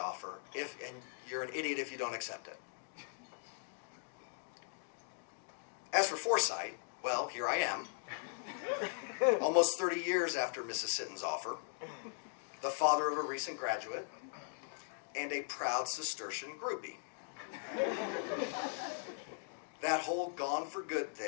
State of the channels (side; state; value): right; silent; digital silence